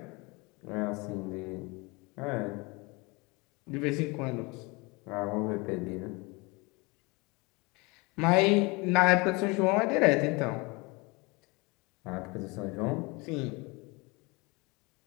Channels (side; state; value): right; quieter; 26.8 dB